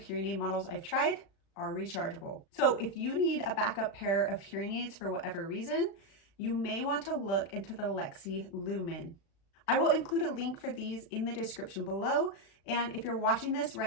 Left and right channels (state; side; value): late; right; 36 ms